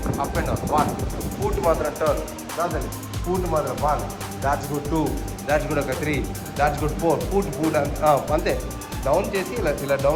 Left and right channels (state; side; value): identical; both; correlation 1.00